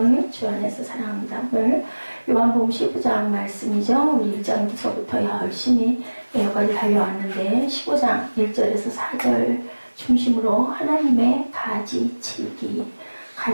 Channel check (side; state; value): both; inverted; correlation -1.00